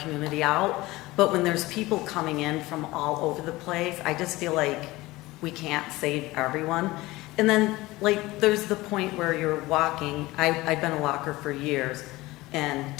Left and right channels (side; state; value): right; quieter; 19.6 dB